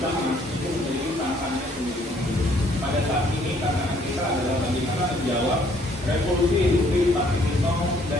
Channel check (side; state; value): both; normal; correlation 0.63